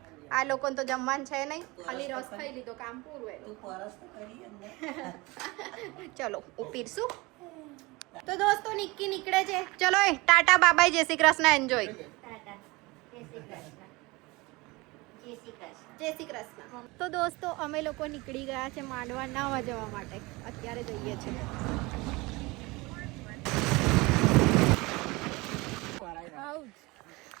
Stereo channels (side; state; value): left; quieter; 23.4 dB